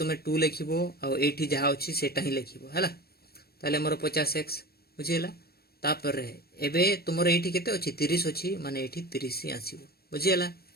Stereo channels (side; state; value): right; late; 0.45 ms